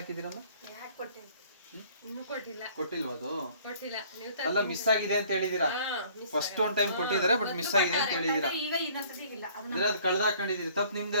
ಹಾಕಿದ್ದೀರಮ್ಮ? ಕೊಟ್ಟಿಲ್ವ? ಅದು ಅಲ್ಲ, ಮಿಸ್ ಆಗಿದೆ ಅಂತ ಹೇಳಿದೀರಾ. ಫಸ್ಟ್ ಒಂದು ಟೈಮ್ ಕೊಟ್ಟಿದ್ದಾರೆ, ಬಟ್ ಮಿಸ್ ಆಗಿದೆ ಅಂತ ಹೇಳಿದೀರಾ. ಅಂದ್ರೆ ಅದು ಕಳ್ದ ಹಾಕೊಂಡಿದೀರಿ, ತಪ್ಪು ನಿಮ್ದೇ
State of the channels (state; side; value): inverted; both; correlation -0.55